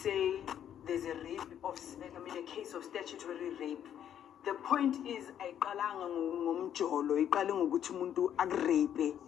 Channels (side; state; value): right; quieter; 9.8 dB